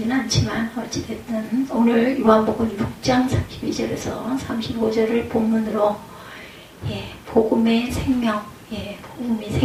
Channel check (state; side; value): identical; both; correlation 1.00